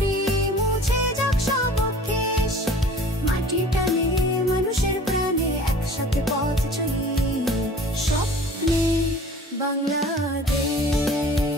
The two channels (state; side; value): normal; both; correlation 0.46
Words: মুছে যাক সব কেশ মাটির টানে মানুষের প্রাণে একসাথে পথ চলি স্বপ্নে